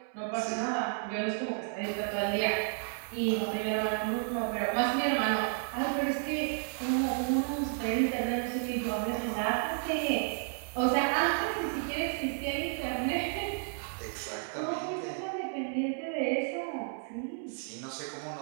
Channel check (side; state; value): left; silent; 56 dB below the other